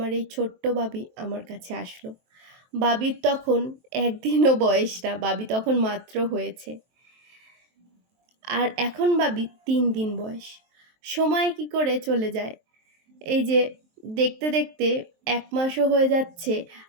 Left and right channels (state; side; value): late; left; 23 ms